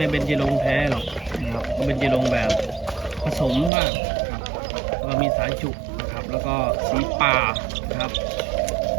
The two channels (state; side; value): drops out; left; at 3.7 s